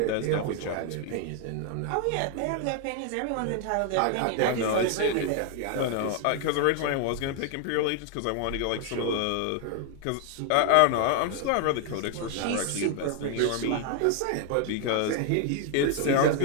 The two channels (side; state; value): both; different; correlation 0.00